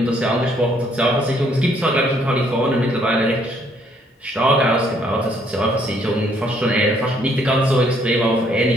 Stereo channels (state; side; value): normal; both; correlation 0.67